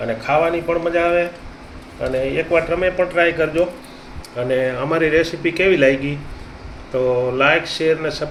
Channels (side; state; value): both; identical; correlation 1.00